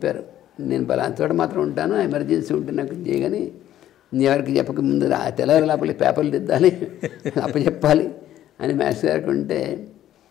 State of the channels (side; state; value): right; quieter; 12.3 dB